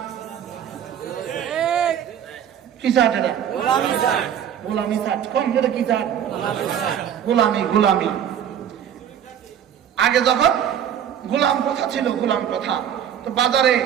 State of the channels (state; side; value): quieter; left; 9.4 dB